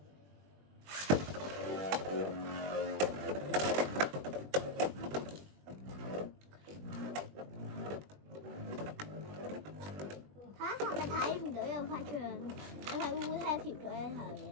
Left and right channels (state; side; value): late; left; 20 ms